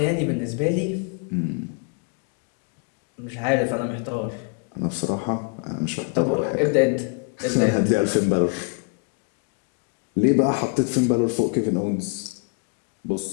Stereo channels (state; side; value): quieter; right; 36.2 dB